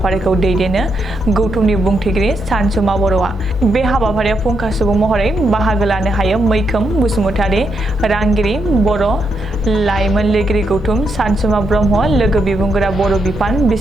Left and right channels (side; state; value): both; normal; correlation 0.81